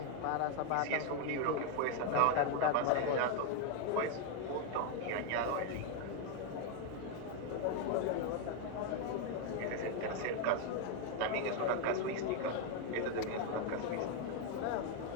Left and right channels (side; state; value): both; different; correlation 0.01